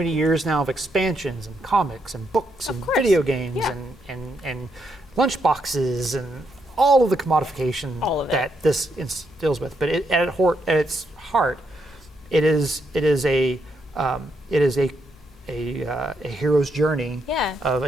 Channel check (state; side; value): noise; left; hum, 26 dB below the sound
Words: years now of expansions and comics and books and video games and lunch boxes and all of the commodification that this deals with. But at its heart, it is a hero's journey of